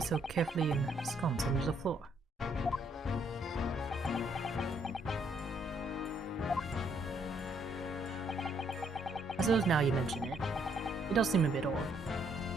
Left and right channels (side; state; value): both; normal; correlation 0.70